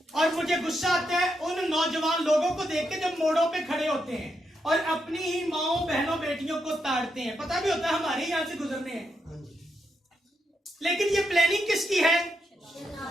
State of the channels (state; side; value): normal; both; correlation 0.83